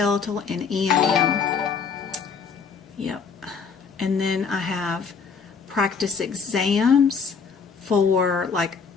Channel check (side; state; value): right; quieter; 5.7 dB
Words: and EMM. Yep. And then I have practice exams for like